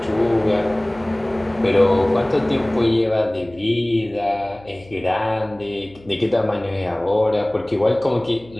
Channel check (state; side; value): noise; left; hum, 24 dB below the sound